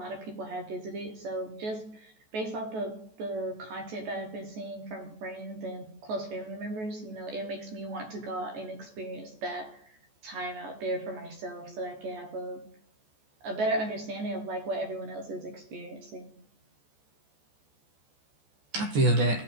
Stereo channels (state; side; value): late; left; 14 ms